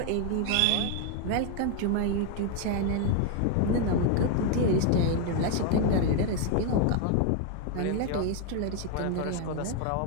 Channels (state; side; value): different; both; correlation 0.01